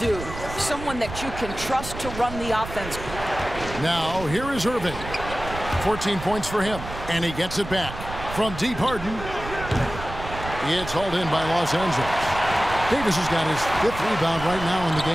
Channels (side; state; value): right; noise; rumble, 10 dB below the sound